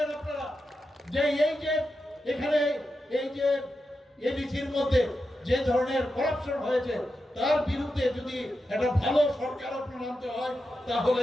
আপনারা, যে এই যে এখানে এই যে এবিসির মধ্যে যে ধরনের করাপশন হয়েছে তার বিরুদ্ধে যদি একটা ভালো সরকার আপনার আনতে হয়,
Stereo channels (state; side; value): normal; both; correlation 0.89